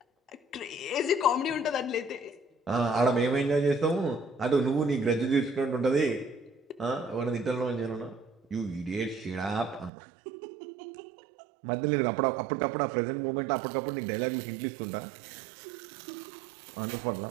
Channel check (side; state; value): left; drops out; at 9.9 s